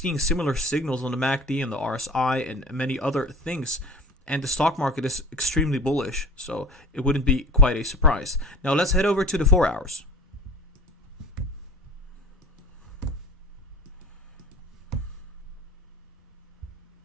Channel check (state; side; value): normal; both; correlation 0.39